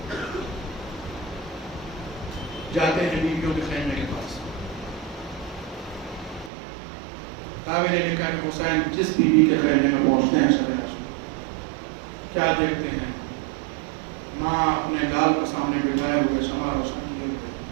جاتے ہیں بیویوں کے خیمے کے پاس۔ راوی نے لکھا کہ حسین جس بیوی کے خیمے میں پہنچتے ہیں کیا دیکھتے ہیں؟ ماں اپنے لال کو سامنے بٹھائے ہوئے شمع روشن کیے ہوئے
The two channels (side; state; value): left; drops out; at 6.5 s